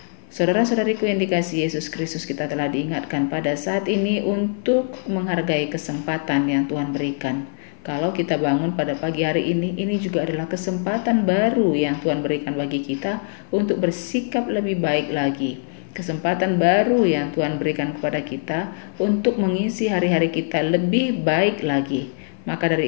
Saudara-saudariku yang dikasihi Yesus Kristus, kita telah diingatkan pada saat ini untuk menghargai kesempatan yang Tuhan berikan. Kalau kita bangun pada pagi hari ini juga adalah kesempatan baru yang Tuhan berikan bagi kita untuk bersikap lebih baik lagi. Kesempatan baru yang Tuhan berikan kepada kita untuk mengisi hari-hari kita lebih baik lagi. Maka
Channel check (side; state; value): right; silent; 56 dB below the other